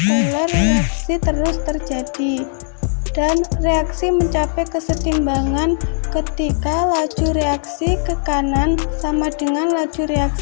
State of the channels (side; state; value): right; silent; digital silence